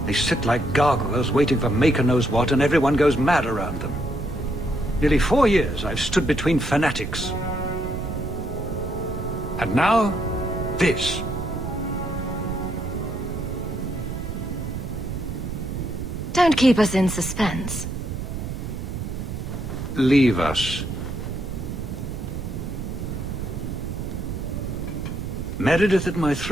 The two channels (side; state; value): right; noise; rumble, 5 dB below the sound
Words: they sit like gargoyles waiting for Maker knows what, and everyone goes mad around them. Nearly 4 years I've stood between fanatics. And now, this. Don't keep us in suspense. Leave us. Meredith at my